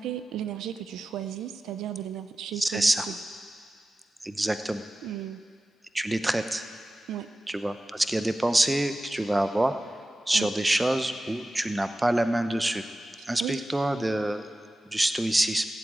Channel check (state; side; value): normal; both; correlation 0.95